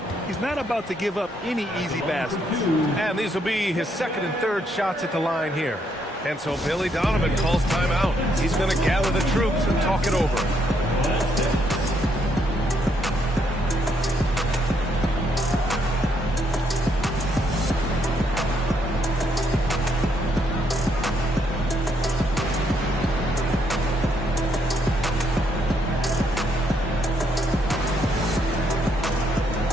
He's not about to give up any easy baskets. And these will be his 2nd and 3rd shots at the line here. And so Billy Donovan calls timeout. He's going to gather the troops and talk it over.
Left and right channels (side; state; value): both; normal; correlation 0.74